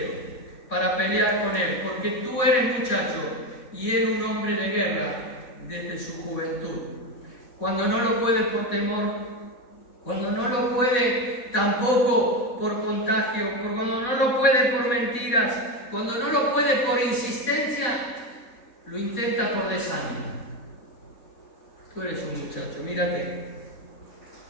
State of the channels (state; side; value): late; right; 4.1 ms